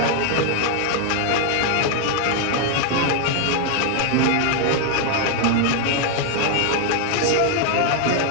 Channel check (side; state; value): both; different; correlation 0.00